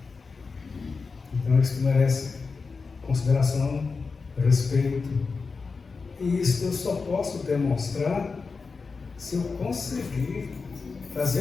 Então isso merece consideração, respeito. E isso eu só posso demonstrar se eu conseguir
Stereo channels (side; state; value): right; quieter; 4.6 dB